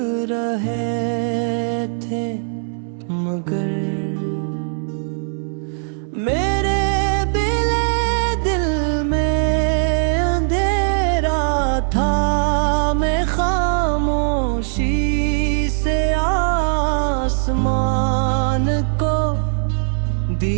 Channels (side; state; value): left; silent; digital silence